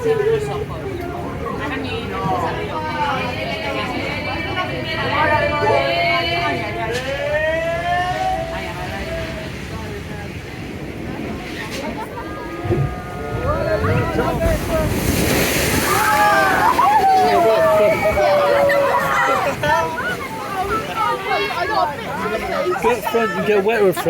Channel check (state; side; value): identical; both; correlation 1.00